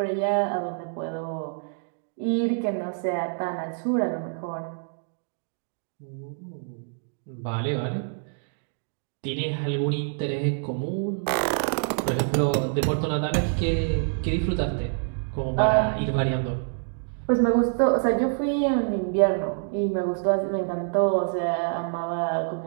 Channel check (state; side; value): silent; left; digital silence